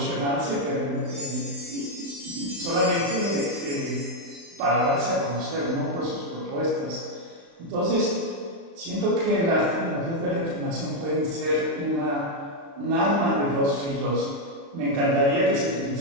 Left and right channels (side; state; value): left; late; 36 ms